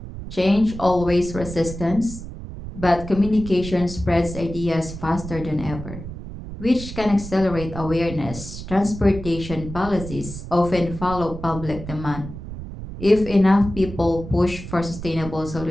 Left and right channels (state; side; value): noise; right; rumble, 10 dB below the sound